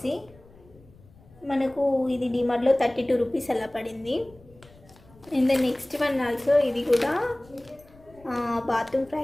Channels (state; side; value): noise; left; rumble, 26 dB below the sound